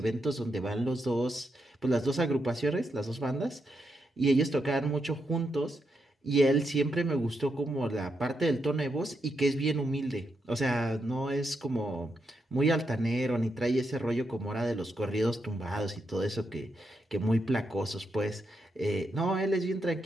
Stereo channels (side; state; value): both; normal; correlation 0.82